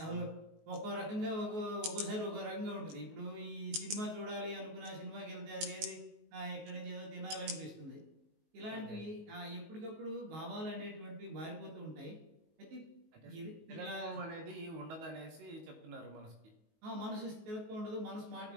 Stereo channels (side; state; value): left; late; 19 ms